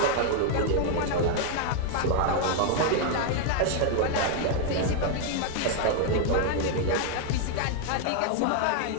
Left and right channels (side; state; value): both; different; correlation 0.00